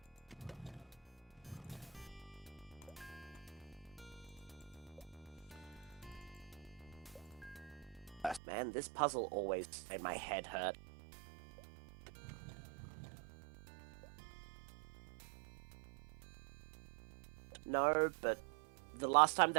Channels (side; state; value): left; drops out; at 8.4 s